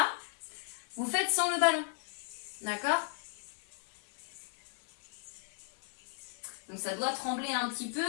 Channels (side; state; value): right; silent; digital silence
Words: vous faites sans le ballon. D'accord? Donc, ça doit trembler un petit peu.